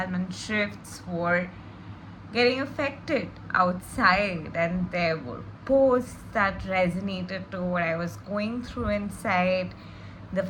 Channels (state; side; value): identical; both; correlation 1.00